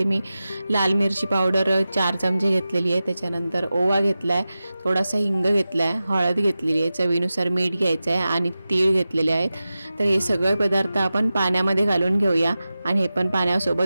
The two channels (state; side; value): inverted; both; correlation -0.94